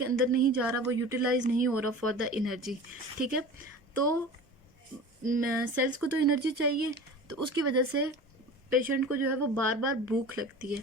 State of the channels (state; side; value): normal; both; correlation 0.36